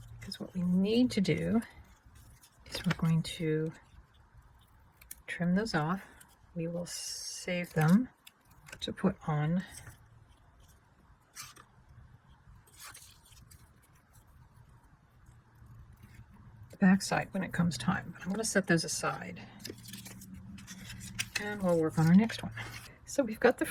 because what we need to do is we're going to trim those off. We will save them to put on the back side when it comes time. But I'm going to set those aside and we'll work on our next one. So we've got the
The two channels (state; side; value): identical; both; correlation 1.00